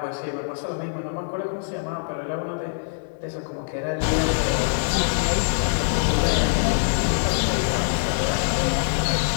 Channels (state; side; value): silent; right; 63 dB below the other